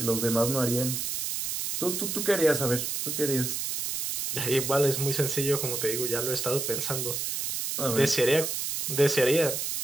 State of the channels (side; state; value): right; noise; hiss, 2 dB below the sound